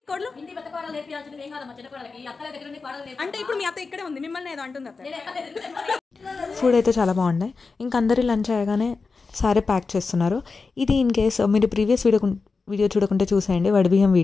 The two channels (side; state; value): right; quieter; 4.4 dB